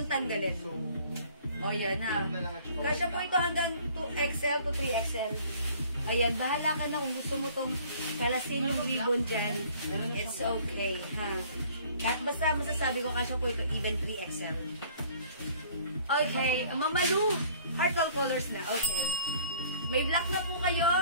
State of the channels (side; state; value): both; inverted; correlation -0.54